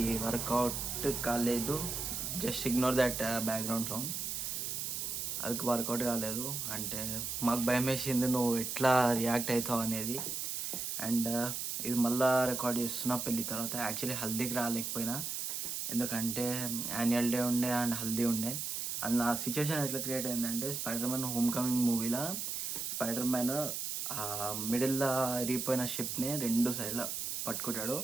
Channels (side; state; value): right; noise; hiss, 3 dB below the sound